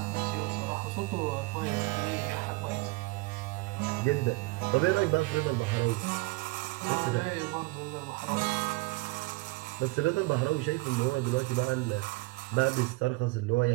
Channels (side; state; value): left; quieter; 23.6 dB